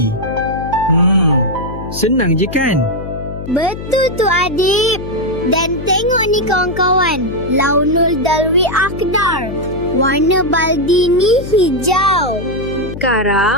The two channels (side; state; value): left; noise; hum, 10 dB below the sound